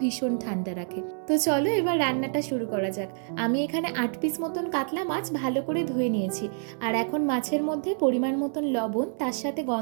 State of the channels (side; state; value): left; silent; 60 dB below the other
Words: ভীষণ ঠান্ডা রাখে। তো চলো এবার রান্নাটা শুরু করা যাক। আমি এখানে 8 পিস মতন কাতলা মাছ ভালো করে ধুয়ে নিয়েছি। আর এখন মাছের মধ্যে পরিমাণ মতন লবণ, তার সাথে